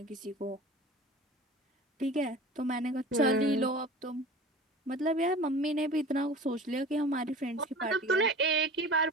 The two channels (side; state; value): both; normal; correlation 0.39